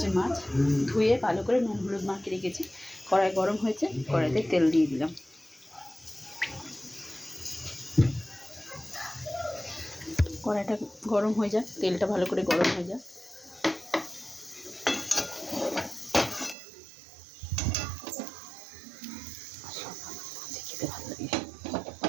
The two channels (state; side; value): drops out; left; at 16.6 s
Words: মাছ, ধুয়ে ভালো করে নুন হলুদ মাখিয়ে রেখেছি। কড়াই গরম হয়েছে, কড়াইতে তেল দিয়ে দিলাম। কড়াইটা গরম হয়ে যায়, তেলটা ভালো করে গরম হয়ে যায়। খেতে ভালো লাগে।